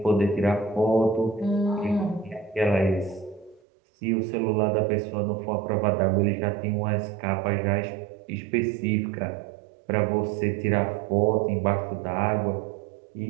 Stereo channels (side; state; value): left; drops out; at 3.6 s